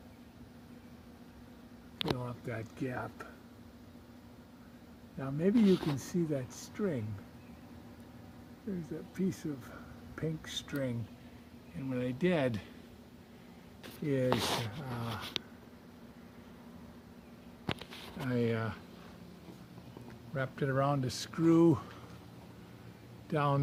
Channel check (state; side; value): identical; both; correlation 1.00